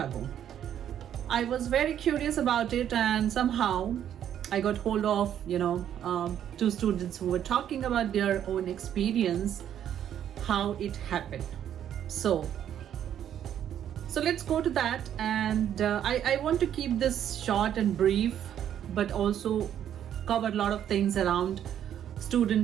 I was very curious about it, and somehow I got hold of two students who were talking about their own experience, how it happened. So let's go to that, and I want to keep this short and brief, but also cover a lot of things around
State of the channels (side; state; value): left; quieter; 10.1 dB